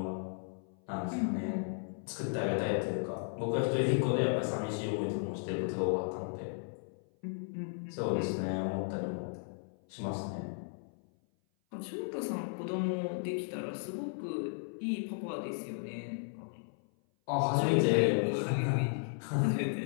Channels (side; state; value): right; silent; 55 dB below the other